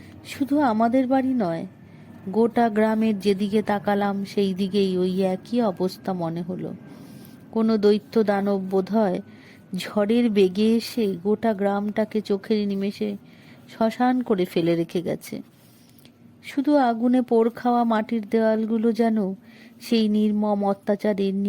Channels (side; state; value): both; identical; correlation 1.00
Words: শুধু আমাদের বাড়ি নয়, গোটা গ্রামের যেদিকে তাকালাম সেই দিকেই ওই একই অবস্থা মনে হলো। কোনো দৈত্য দানব বোধহয় ঝড়ের বেগে এসে গোটা গ্রামটাকে চোখের নিমেষে শ্মশান করে ফেলে রেখে গেছে। শুধু আগুনে পোড় খাওয়া মাটির দেওয়ালগুলো যেন সেই নির্মম অত্যাচারের